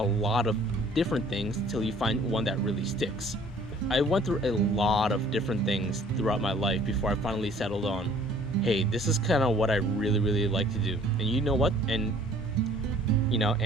lot of different things until you find one that really sticks. I went through a lot of different things throughout my life before I finally settled on, hey, this is kind of what I really, really like to do. And you know what? And, you know,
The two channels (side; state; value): both; normal; correlation 0.55